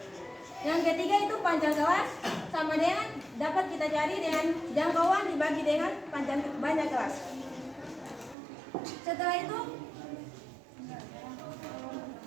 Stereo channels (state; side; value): drops out; left; at 8.3 s